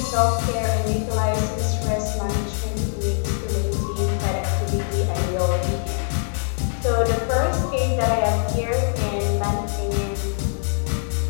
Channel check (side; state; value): right; silent; 64 dB below the other